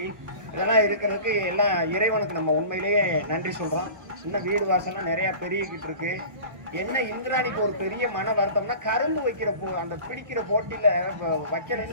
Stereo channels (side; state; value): left; late; 1.1 ms